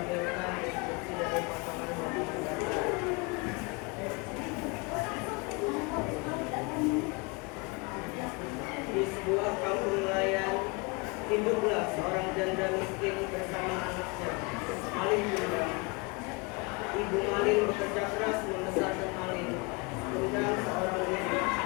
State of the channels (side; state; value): right; quieter; 28.8 dB